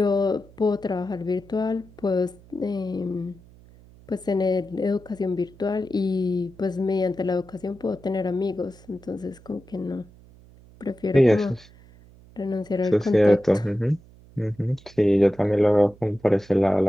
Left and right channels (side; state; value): right; noise; hum, 24 dB below the sound